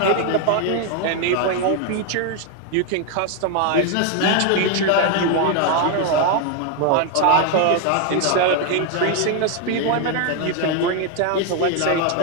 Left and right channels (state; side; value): different; both; correlation 0.01